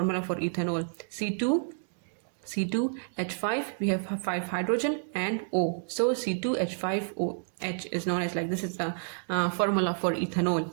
for ethanol: C2H5, we have 5 hydrogen and O. So C2H5OH is known as, like this is the formula for ethanol.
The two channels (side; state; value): left; silent; digital silence